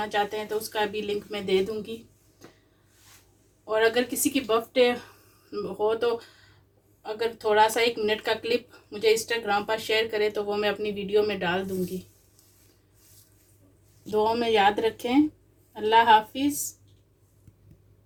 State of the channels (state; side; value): identical; both; correlation 1.00